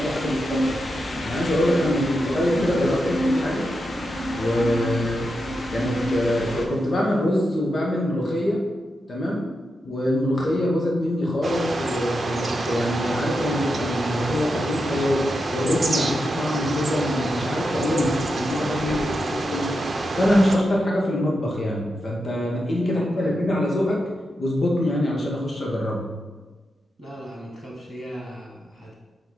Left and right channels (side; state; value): both; normal; correlation 0.87